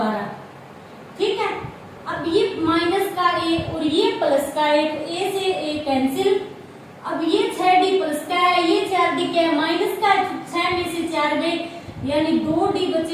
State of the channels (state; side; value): identical; both; correlation 1.00